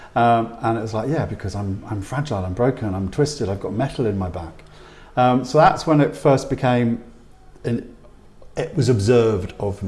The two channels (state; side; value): identical; both; correlation 1.00